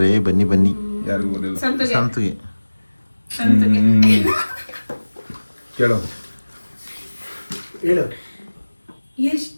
ಬನ್ನಿ ಬನ್ನಿ. ಯಾರಿಗೂ ಗೊತ್ತಿಲ್ಲ. ಸಂತಿಗೆ ಕೇಳು ಹೇಳು.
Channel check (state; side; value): inverted; both; correlation -1.00